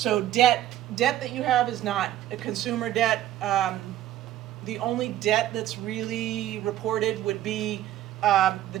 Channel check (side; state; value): left; quieter; 13.0 dB